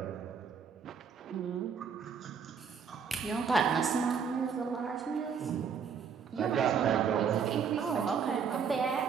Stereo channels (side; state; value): left; quieter; 6.6 dB